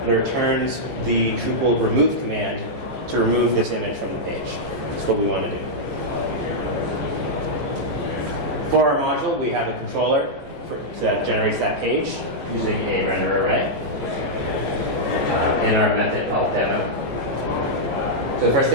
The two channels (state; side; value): late; left; 15 ms